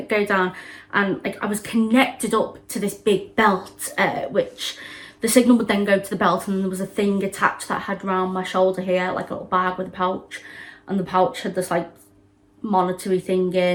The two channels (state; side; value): identical; both; correlation 1.00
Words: go down, and like I was connected up to this big belt, which the signal would then go to the belt, and there was a thing attached that I had around my shoulder here, like a little bag with a pouch, and the pouch had this like monitory thing